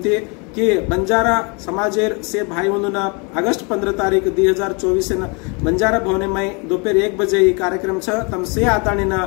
कि बंजारा समाजेर से भाई उन्होंने अगस्त 15 तारीख 2024 बंजारा भवने में दोपहर 1 बजे ये कार्यक्रम छ तमसे आतानी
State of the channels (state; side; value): quieter; right; 32.2 dB